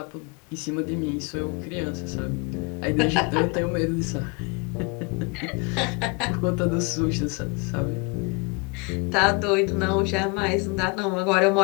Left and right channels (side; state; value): right; quieter; 30.0 dB